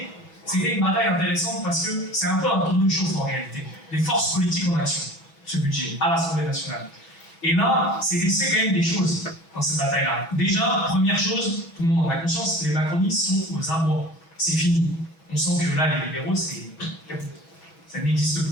c'était une bataille intéressante parce que c'est un peu un tour de chauffe en réalité. Les forces politiques en action, ce budget, à l'Assemblée nationale. Et là, c'est laissé quand même des choses dans cette bataille-là. Déjà, première chose, tout le monde en a conscience, les macronistes sont aux abois. C'est fini. On sent que là, les libéraux, ça n'existe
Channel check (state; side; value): late; right; 6.2 ms